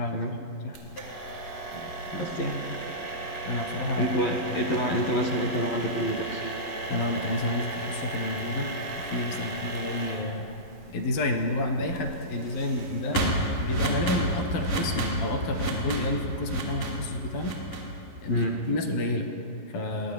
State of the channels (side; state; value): right; late; 12 ms